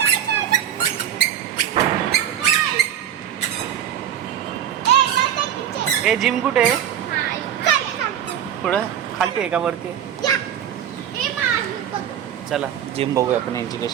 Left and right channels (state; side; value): quieter; left; 10.1 dB